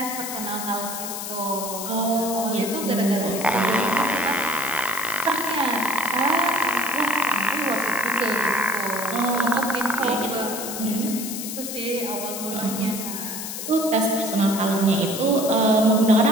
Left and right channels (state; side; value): noise; left; hiss, 6 dB below the sound